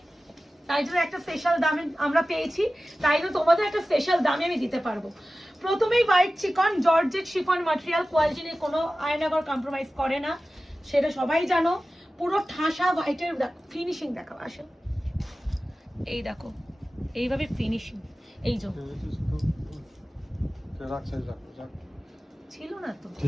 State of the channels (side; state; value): both; normal; correlation 0.95